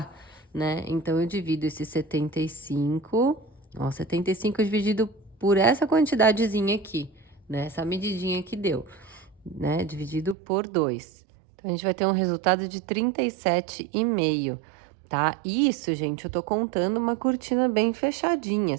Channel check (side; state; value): left; drops out; at 10.4 s